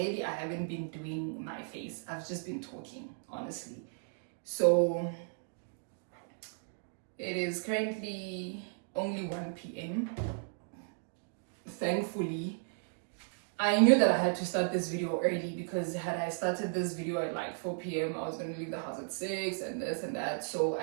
I haven't been doing my face. I've just been talking, honestly. So it is currently only 1 p.m. Thankfully, I knew that I had to start this video early, because had I started this video at like 4 p.m, I was going to leave the house at 6 and this and that. So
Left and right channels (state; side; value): silent; left; digital silence